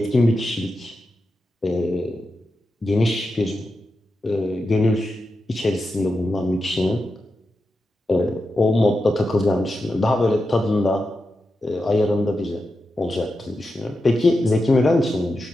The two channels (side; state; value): both; normal; correlation 0.89